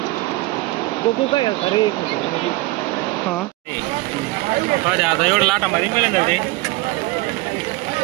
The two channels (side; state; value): left; quieter; 21.1 dB